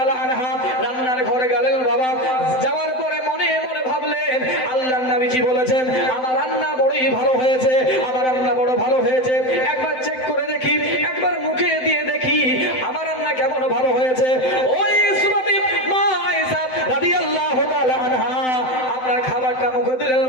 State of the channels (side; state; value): right; late; 7.8 ms